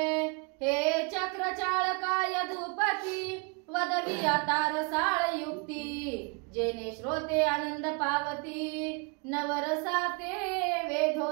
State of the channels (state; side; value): quieter; left; 33.1 dB